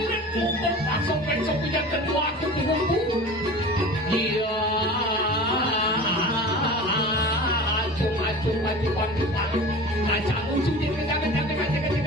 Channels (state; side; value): normal; both; correlation 0.37